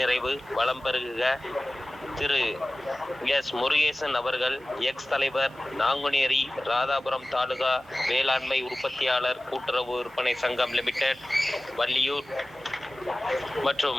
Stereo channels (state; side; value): normal; both; correlation 0.97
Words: வளம் பெருக திரு எஸ் முருகேசன் அவர்கள், எக்ஸ் தலைவர், நாங்குநேரி ராதாபுரம் தாலுகா வேளாண்மை உற்பத்தியாளர் கூட்டுறவு விற்பனை சங்கம் லிமிடெட் வள்ளியூர்